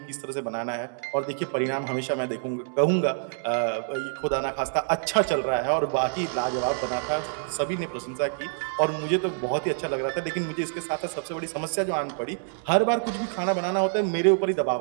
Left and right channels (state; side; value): silent; left; 60 dB below the other